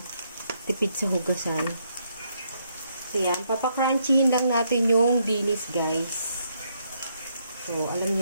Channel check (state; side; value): inverted; both; correlation -0.75